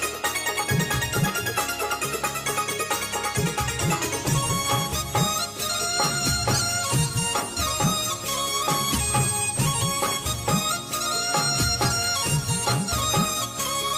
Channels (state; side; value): identical; both; correlation 1.00